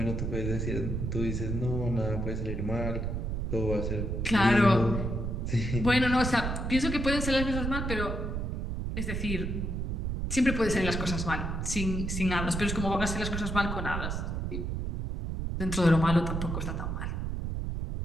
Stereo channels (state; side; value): noise; right; rumble, 2 dB below the sound